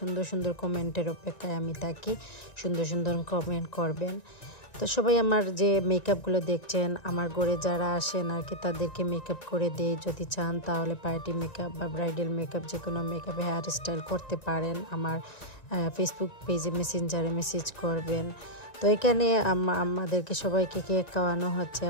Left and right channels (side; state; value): right; late; 1.9 ms